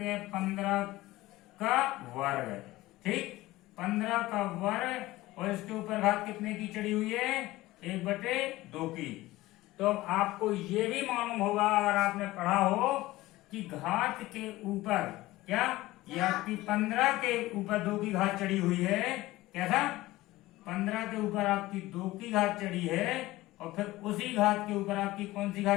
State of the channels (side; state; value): right; quieter; 18.0 dB